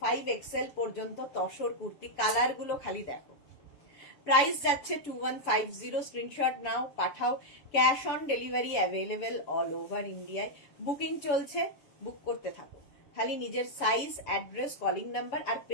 5XL পর্যন্ত তসর কুর্তি, কালার গুলো খালি দেখো। প্রাইস যাচ্ছে 2150। স্ক্রিনশট নাও, পাঠাও। Cash on delivery available all over ইন্ডিয়ায়। বুকিং চলছে, বুক করতে থাকো। খালি নিজের সাইজ, অ্যাড্রেস, কলিং নাম্বার আর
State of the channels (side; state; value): right; late; 7.0 ms